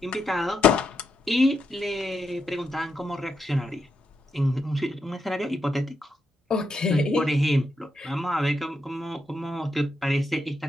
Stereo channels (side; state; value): both; normal; correlation 0.83